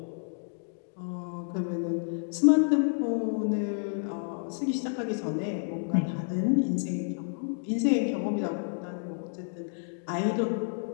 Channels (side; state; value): right; silent; digital silence